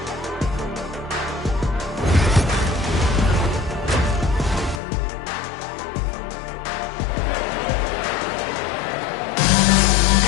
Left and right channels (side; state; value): right; drops out; at 4.8 s